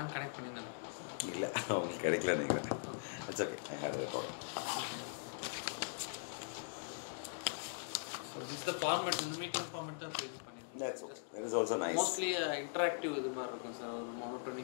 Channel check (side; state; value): right; silent; digital silence